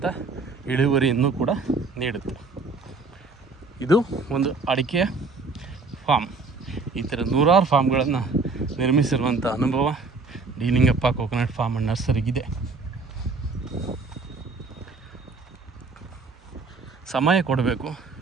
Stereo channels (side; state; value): left; quieter; 4.1 dB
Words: ಇಳುವರಿಯನ್ನು ಕೂಡ ನೀಡುತ್ತೆ. ಇದು ಒಂದು ಅಡಿಕೆಯ ಫಾರ್ಮ್. ಈ ಥರ 100 ಫಾರ್ಮ್ಗಳನ್ನು ನಿರ್ಮಿಸಿರುವಂಥ ಅನುಭವ D Lingappa coconut farm and ನರ್ಸರಿಗಿದೆ. ಸಮಯ ಕೊಡಬೇಕು,